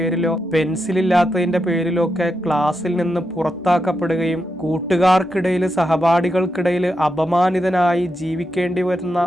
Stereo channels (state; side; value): normal; both; correlation 0.85